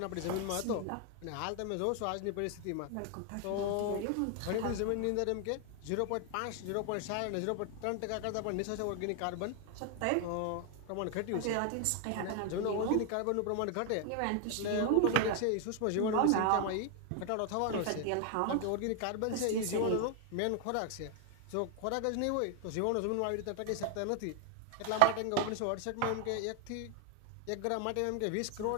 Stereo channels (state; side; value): different; both; correlation 0.00